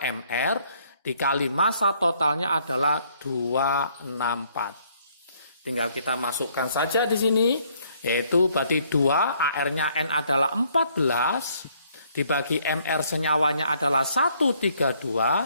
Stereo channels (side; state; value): both; inverted; correlation -0.66